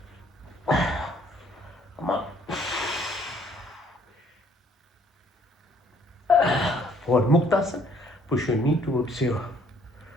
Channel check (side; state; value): both; normal; correlation 0.62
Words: Come on. For Muktasana, push your knee towards your